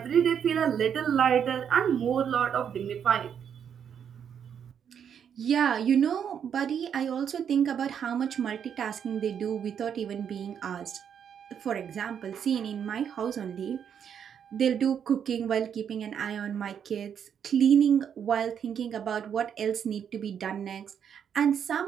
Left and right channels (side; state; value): left; quieter; 8.1 dB